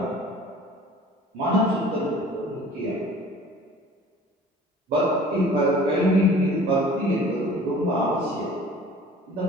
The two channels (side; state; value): both; normal; correlation 0.47